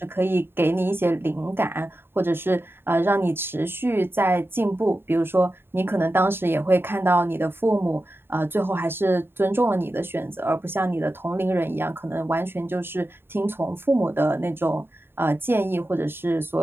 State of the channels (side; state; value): left; late; 0.11 ms